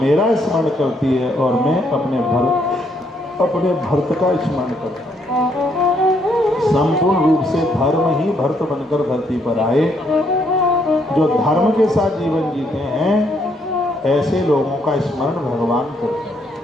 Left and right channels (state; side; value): normal; both; correlation 0.72